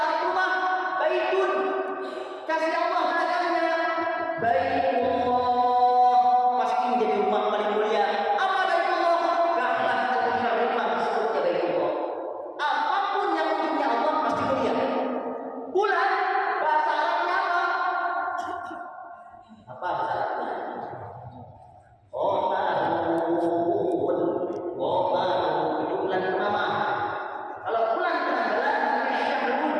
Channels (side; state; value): both; identical; correlation 1.00